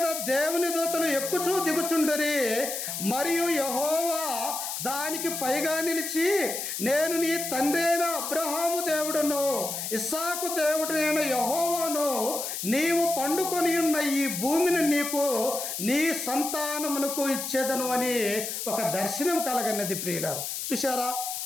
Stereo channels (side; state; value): left; noise; hiss, 4 dB below the sound